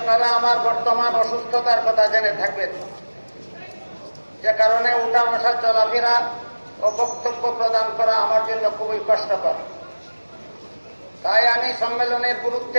আমার বর্তমান অসুস্থতার কথা জেনে থাকবেন, যে কারণে উঠা বসা চলাফেরা ও বক্তব্য প্রদান করা আমার জন্য খুবই কষ্টকর। তাই আমি সম্মেলনের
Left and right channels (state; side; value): inverted; both; correlation -1.00